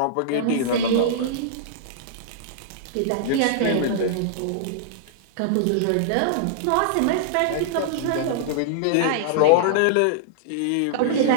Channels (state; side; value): different; both; correlation -0.02